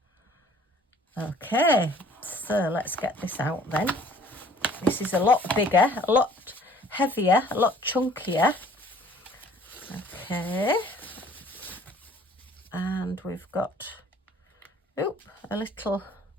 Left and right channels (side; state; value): both; normal; correlation 0.54